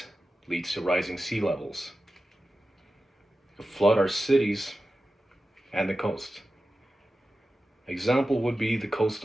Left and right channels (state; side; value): normal; both; correlation 0.93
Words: leads to rising sea levels, to flood our cities and the coast. Example would be the coast